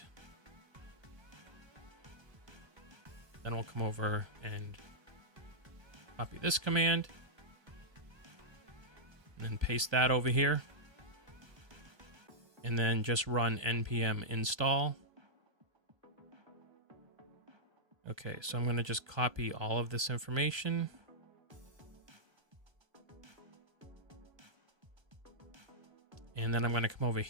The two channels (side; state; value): left; late; 1.3 ms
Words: Then we'll come over and copy this command. And then paste that over here. And then just run npm install. Okay, so I'm going to just copy all of this information. And then I'm going to come over